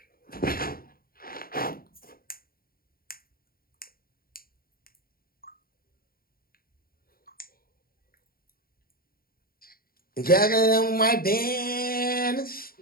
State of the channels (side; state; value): right; late; 0.43 ms